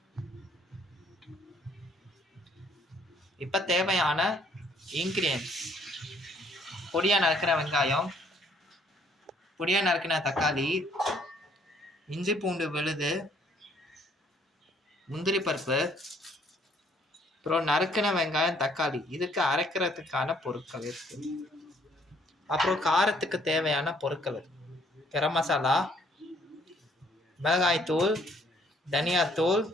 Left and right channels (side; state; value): both; normal; correlation 0.64